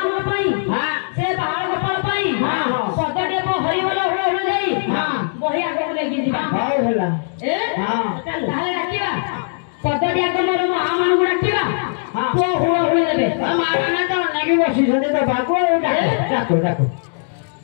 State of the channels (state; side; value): silent; right; digital silence